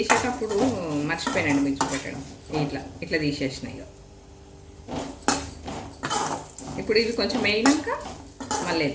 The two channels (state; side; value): identical; both; correlation 1.00